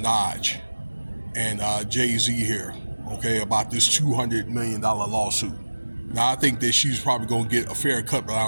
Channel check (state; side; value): inverted; both; correlation -1.00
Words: and JayZ here. Okay, about this $200 million lawsuit. Now I think that she's probably gonna get a fair cut, but I